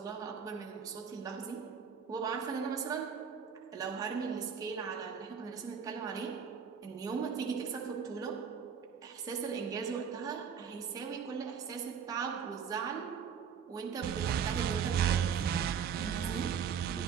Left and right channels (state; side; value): quieter; left; 7.0 dB